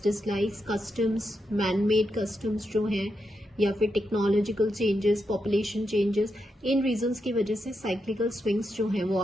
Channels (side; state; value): both; normal; correlation 0.85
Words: dislikes, customs, manmade customs जो हैं, या फिर टेक्नोलॉजिकल चेंजेस, पॉपुलेशन चेंजेस, इन रीजंस की वजह से साइक्लिकल स्विंग्स जो हैं वो